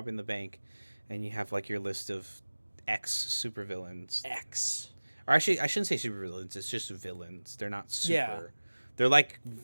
the bank," and you have like your list of X supervillains. X. Or actually, I shouldn't say supervillains. It's just villains. They're not super. Yeah. They're like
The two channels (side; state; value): both; inverted; correlation -1.00